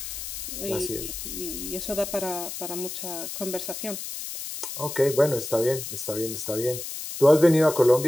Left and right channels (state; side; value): noise; left; hiss, 7 dB below the sound